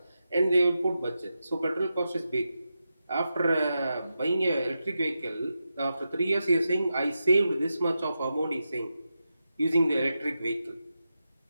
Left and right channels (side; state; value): both; inverted; correlation -0.89